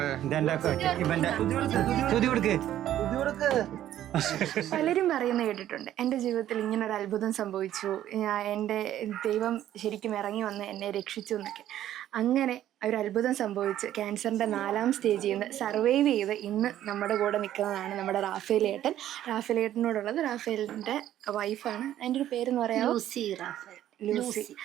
പലരും പറയുന്നത് കേട്ടിട്ടുണ്ട്, എൻ്റെ ജീവിതത്തിൽ ഇങ്ങനെ ഒരു അത്ഭുതം സംഭവിച്ചു, എൻ്റെ ദൈവം ശരിക്കും ഇറങ്ങി വന്ന് എന്നെ രക്ഷിച്ചു എന്നൊക്കെ. അങ്ങനെ ഒരു അത്ഭുതം സംഭവിച്ച് ക്യാൻസറിൻ്റെ 4ാം സ്റ്റേജിൽ നിന്ന് സർവൈവ് ചെയ്ത് ഇന്ന് നമ്മുടെ കൂടെ നിൽക്കുന്നതാണ് നമ്മുടെ റാഫേലിയേട്ടൻ. റാഫേലിയേട്ടനോടുള്ളത് റാഫേലിൻ്റെ വൈഫാണ്. അതിൻ്റെ ഒരു പേരെന്ന് പറയാം, ലൂസി.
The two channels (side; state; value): left; quieter; 12.2 dB